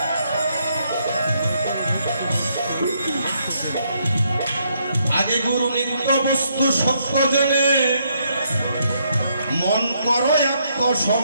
আগে গুরু নিত্য বস্তু সত্য জানে, মন করো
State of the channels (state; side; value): inverted; both; correlation -0.74